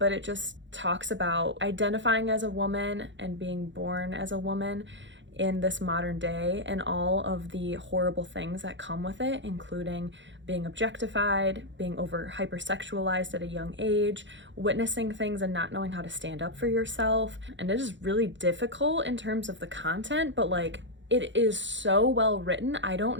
it just talks about identifying as a woman and being born as a woman in this modern day and all of the horrible things that come with it, including being objectified, being hypersexualized at a young age, witnessing things and not knowing how to stand up for yourself. And it is really difficult in terms of the content, but like, it is so well written. I don't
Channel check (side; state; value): left; late; 0.54 ms